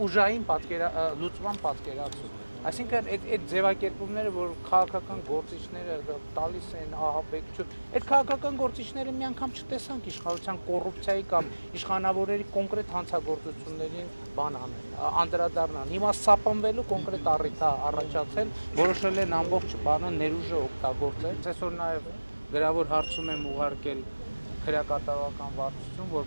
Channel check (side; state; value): both; inverted; correlation -1.00